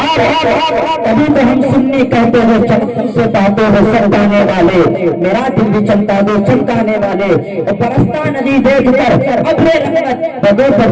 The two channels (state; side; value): identical; both; correlation 1.00